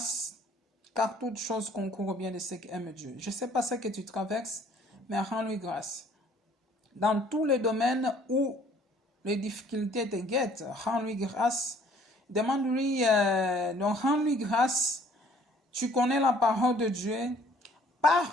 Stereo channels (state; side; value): normal; both; correlation 0.58